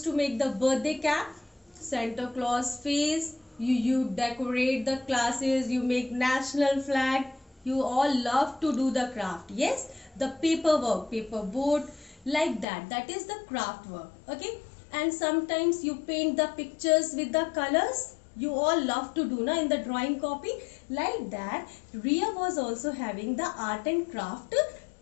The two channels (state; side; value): drops out; right; at 12.7 s